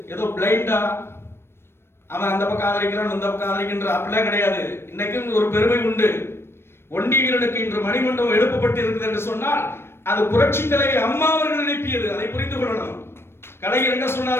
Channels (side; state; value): right; late; 0.12 ms